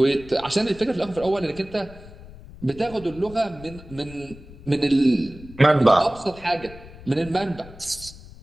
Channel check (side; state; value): left; noise; rumble, 18 dB below the sound